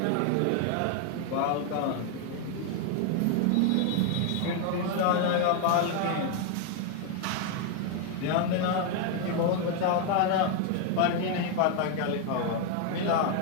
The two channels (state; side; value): different; both; correlation 0.00